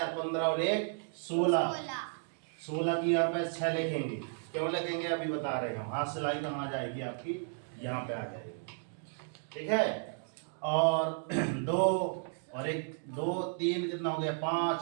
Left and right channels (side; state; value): left; silent; 55 dB below the other